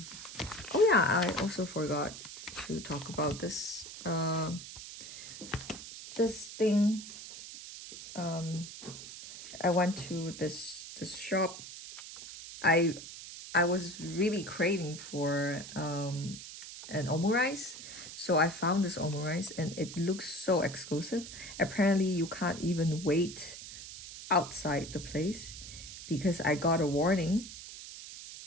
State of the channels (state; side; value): noise; right; hiss, 12 dB below the sound